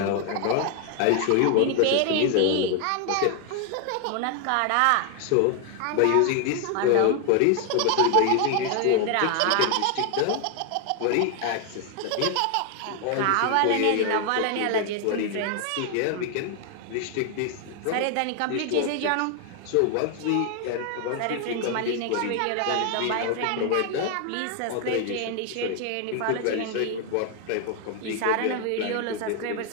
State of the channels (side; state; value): both; different; correlation 0.00